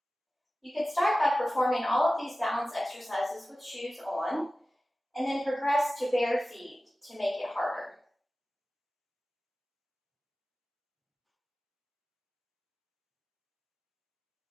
You could start by performing all of these balance exercises with shoes on, and then progress to bare feet to make it harder.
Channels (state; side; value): normal; both; correlation 0.95